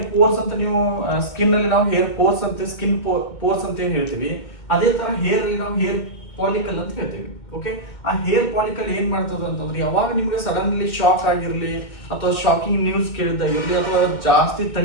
ಪೋರ್ಸ್ ಅಂತ ನೀವು ಸ್ಕಿನ್ ಅಲ್ಲಿ ನಾವು ಹೇರ್ ಪೋರ್ಸ್ ಅಂತ ಸ್ಕಿನ್ ಪೋರ್ಸ್ ಅಂತ ಏನ್ ಹೇಳ್ತೀವಿ, ಅದೇ ತರ ಹೇರ್ ಅಲ್ಲಿ ನಾವು ಹೇರ್ ಪಾಲಿಕಲ್ ಅಂತ ಹೇಳ್ತೀವಿ. ಓಕೆ, ಆ ಹೇರ್ ಪಾಲಿಕಲ್ ಏನ್ ಮಾಡ್ತದ ಅಂತಂದ್ರೆ ಯಾವಾಗ ನಿಮ್ಗೆ ಸಡನ್ಲಿ ಶಾಕ್ ಆಗಿರ್ಲಿ ಅಥವಾ ಶಾಕಿಂಗ್ ನ್ಯೂಸ್ ಕೇಳಿದಾಗಿರ್ಲಿ ಅಥವಾ ಜಾಸ್ತಿ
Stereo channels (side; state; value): right; late; 2.1 ms